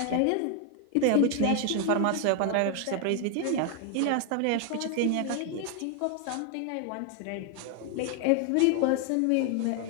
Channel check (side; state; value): both; different; correlation 0.01